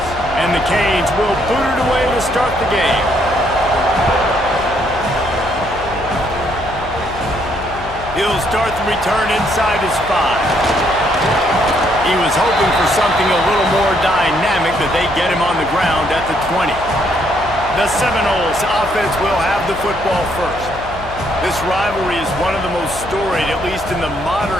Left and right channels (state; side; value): noise; left; hum, 14 dB below the sound